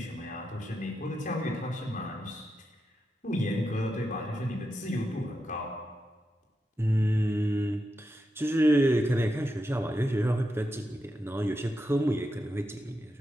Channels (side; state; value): both; normal; correlation 0.87